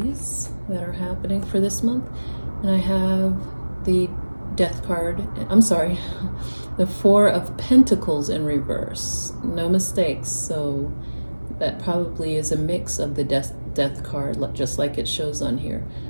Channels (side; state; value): both; inverted; correlation -1.00